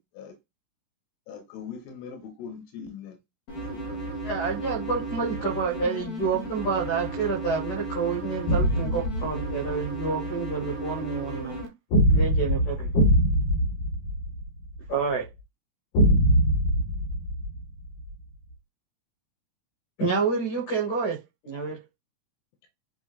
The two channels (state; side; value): late; right; 18 ms